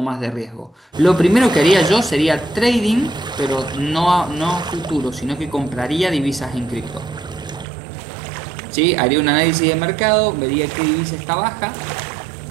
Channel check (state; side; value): drops out; left; at 7.7 s